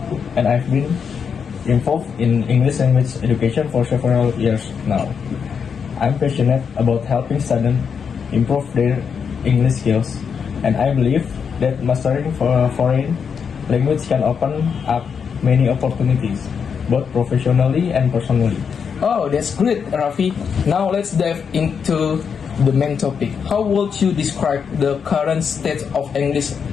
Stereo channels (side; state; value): right; quieter; 6.6 dB